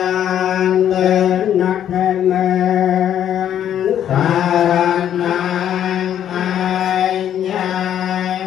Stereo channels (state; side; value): quieter; right; 10.2 dB